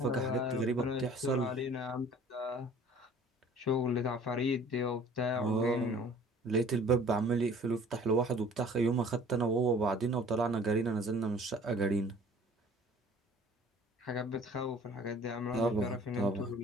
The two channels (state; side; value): normal; both; correlation 0.51